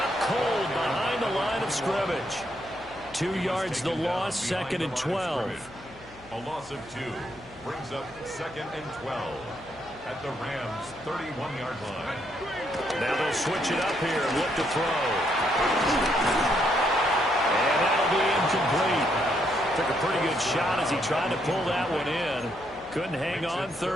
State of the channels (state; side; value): noise; left; hum, 22 dB below the sound